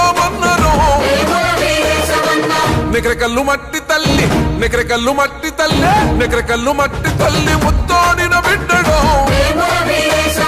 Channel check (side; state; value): both; identical; correlation 1.00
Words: నికరకల్లు మట్టి తల్లి నికరకల్లు మట్టి తల్లి నికరకల్లు మట్టి తల్లి ముత్తోడిన బిడ్డడు